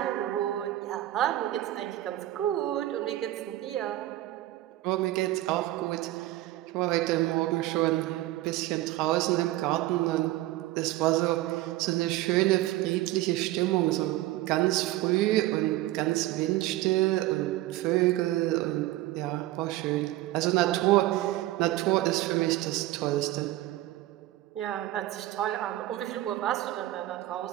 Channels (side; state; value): left; quieter; 15.9 dB